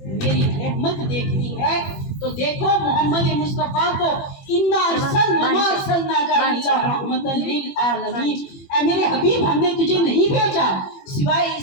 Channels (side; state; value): right; late; 21 ms